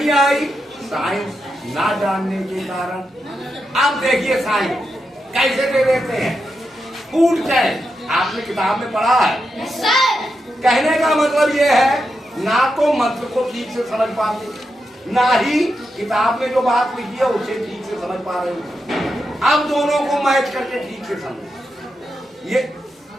आई? साइंस ना जानने के कारण। अब देखिए साइंस कैसे दे देते हैं। फूड चैन आपने किताब में पढ़ा है। कहने का मतलब ये है, ना तो मंत्र को ठीक से समझ पाते, ना ही किताब में जो बात लिखी है उसे ठीक से समझ पा रहे हो। अब दोनों को मैच करके ठीक से समझो।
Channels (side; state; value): both; normal; correlation 0.86